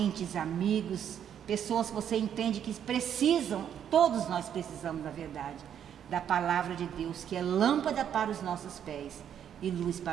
amigos, pessoas que você entende que precisam, todos nós precisamos, na verdade, da palavra de Deus, que é lâmpada para os nossos pés e luz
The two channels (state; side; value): quieter; left; 9.2 dB